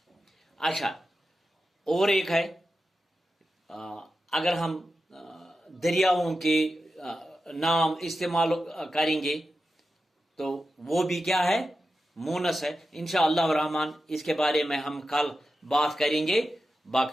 اچھا، اور ایک ہے اگر ہم دریاؤں کے نام استعمال کریں گے تو وہ بھی کیا ہے مونس ہے. انشاءاللہ الرحمن اس کے بارے میں ہم کل بات کریں گے.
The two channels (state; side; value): normal; both; correlation 0.91